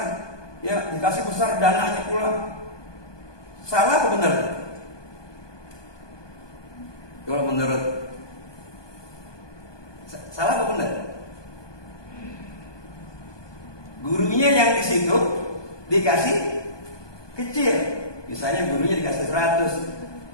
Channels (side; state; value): right; late; 1.2 ms